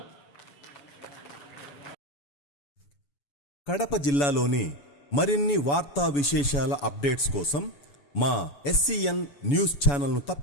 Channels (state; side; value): late; right; 7.0 ms